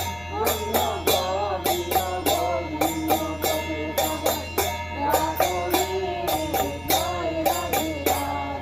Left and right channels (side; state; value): left; noise; rumble, 21 dB below the sound